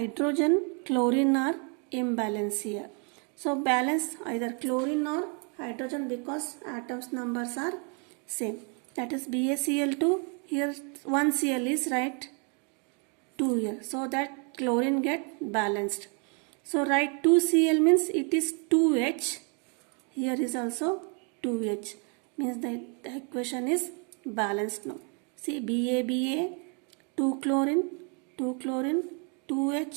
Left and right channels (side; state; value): left; quieter; 37.0 dB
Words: chlorine are imbalanced here. So balance either chlorine or hydrogen because atoms numbers are same. That is BaCl2. Here 1 Cl is right, 2 here, so that chlorine get balanced. So write 2Cl means it is 2H. Here is also 2H, means the equation is balanced now. See, Ba 2 chlorine